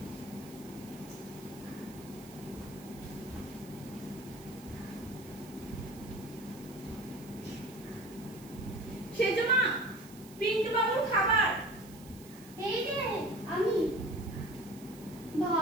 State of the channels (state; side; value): noise; right; hiss, 20 dB below the sound